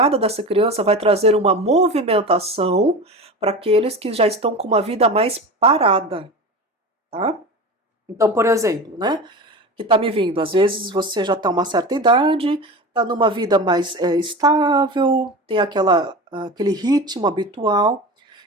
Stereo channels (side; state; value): both; normal; correlation 0.29